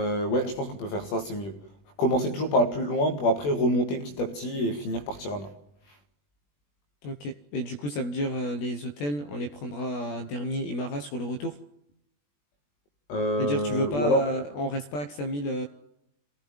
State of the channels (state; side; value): late; right; 21 ms